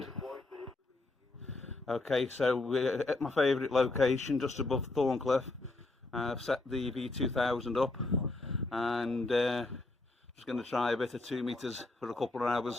Okay, so we're at my favourite location just above Thorncliffe. I've set the V2000 up and just going to try a bit of 2 meters for a couple of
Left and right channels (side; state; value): right; quieter; 3.1 dB